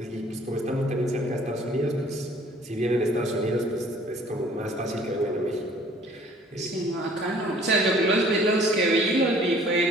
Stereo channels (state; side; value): normal; both; correlation 0.55